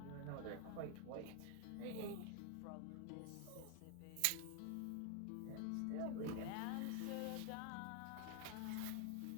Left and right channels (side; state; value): both; different; correlation 0.00